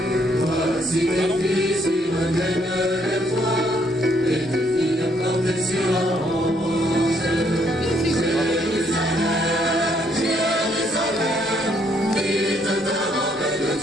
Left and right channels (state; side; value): normal; both; correlation 0.70